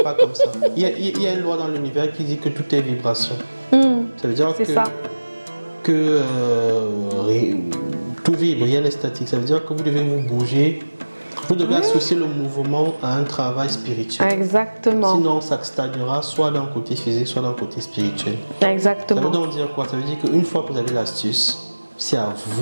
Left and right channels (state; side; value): inverted; both; correlation -1.00